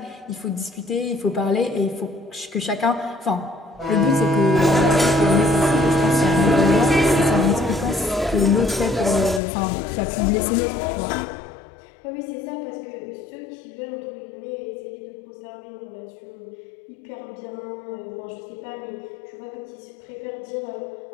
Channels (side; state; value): right; drops out; at 9.4 s